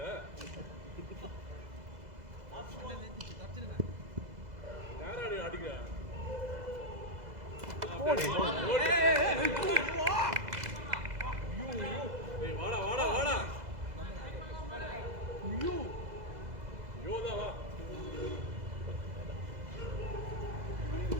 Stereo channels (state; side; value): late; left; 2.0 ms